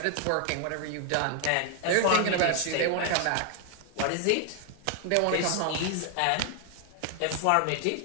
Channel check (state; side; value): different; both; correlation 0.00